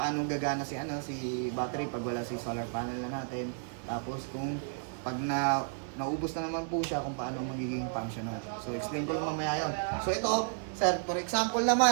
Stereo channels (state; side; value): silent; left; digital silence